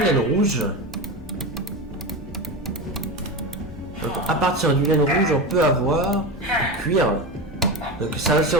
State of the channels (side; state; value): both; normal; correlation 0.22